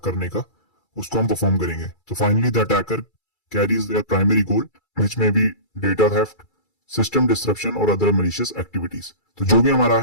करने का उसको हम परफॉर्म करेंगे। तो finally the attacker carries there primary goal which may be data theft, system disruption और other malicious activities। तो जो भी हमारा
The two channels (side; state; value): right; late; 2.3 ms